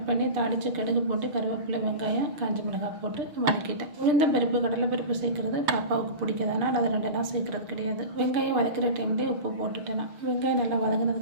பண்ணி தாளித்து கடுகு போட்டு கருவேப்பிலை வெங்காயம் காஞ்ச மிளகாய் போட்டு வதக்கிட்டேன். உளுந்த பருப்பு கடலை பருப்பு சேர்க்குறது பாப்பாவுக்கு பிடிக்காதனால அதை 2 நாள் சேர்க்குறது கிடையாது. வெங்காயம் வதக்கிற டைம்லேயே உப்பு போட்டுட்டேன். வெங்காயம் நல்லா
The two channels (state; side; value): late; left; 6.6 ms